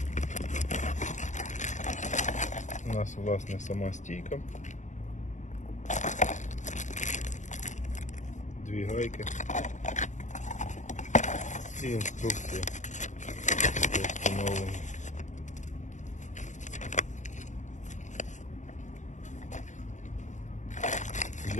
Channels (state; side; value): late; right; 0.35 ms